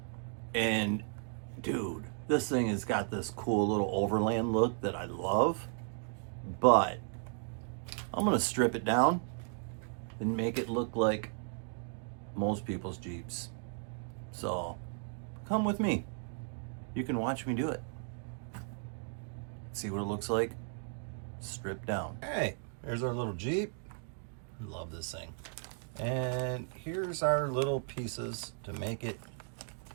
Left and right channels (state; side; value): silent; left; 54 dB below the other